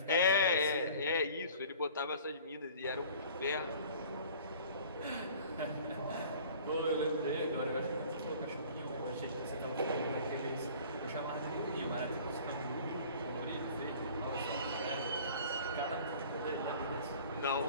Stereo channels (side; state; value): both; inverted; correlation -0.48